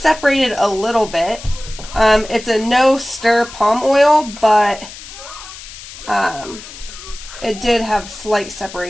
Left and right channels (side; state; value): left; noise; hiss, 15 dB below the sound